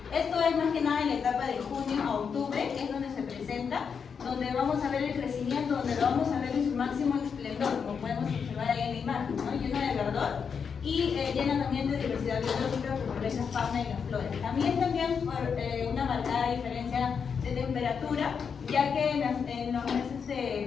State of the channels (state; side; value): quieter; right; 6.4 dB